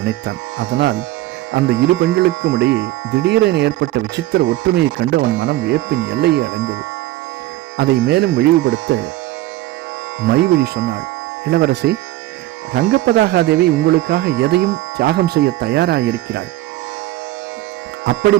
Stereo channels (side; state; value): left; quieter; 16.1 dB